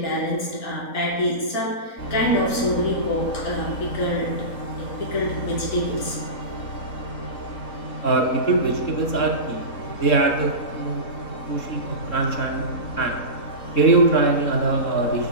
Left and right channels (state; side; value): late; right; 4.4 ms